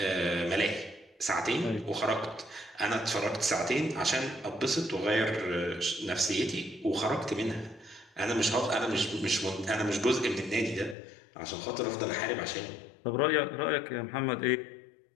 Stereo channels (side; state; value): right; drops out; at 11.0 s